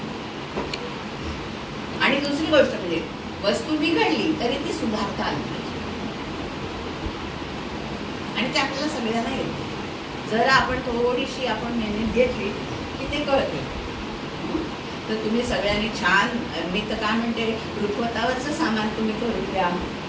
आणि दुसरी गोष्ट म्हणजे वस्तू बिघडली तरी ती सुधारता आली पाहिजे, आणि ते आपल्याला सगळ्यांना येते. जर आपण थोडीशी आपण मेहनत घेतली की ते कळते. तर तुम्ही सगळ्यांनी छान, मी तर काय म्हणते, रुखवतावरचं सामान तुम्ही करून द्या.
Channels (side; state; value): both; identical; correlation 1.00